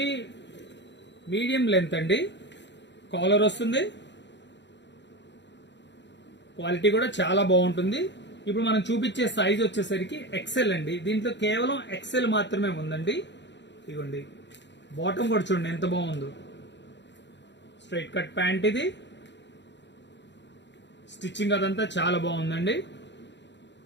మీడియం లెంత్ అండి. కాలర్ వస్తుంది, క్వాలిటీ కూడా చాలా బాగుంటుంది. ఇప్పుడు మనం చూపించే సైజ్ వచ్చేసరికి ఎక్సెల్ అండి. దీంట్లో కేవలం ఎక్సెల్ మాత్రమే ఉందండి. ఇదిగోండి, బాటమ్ కూడా చూడండి ఎంత బాగుందో. స్ట్రైట్ కట్ ప్యాంట్ ఇది. స్టిచ్చింగ్ అదంతా చాలా బాగుందండి,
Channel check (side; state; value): right; late; 0.52 ms